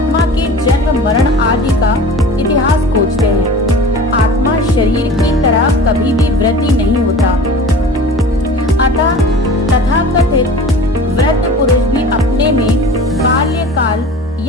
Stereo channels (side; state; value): both; normal; correlation 0.40